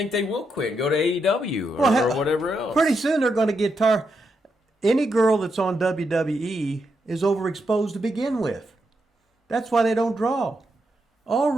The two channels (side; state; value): both; normal; correlation 0.82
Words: they will quit and go to AEW or whatever else. Pretty soon they're going to get tired. Any girl that's on WWE is overexposed to begin with. That's why they don't draw. All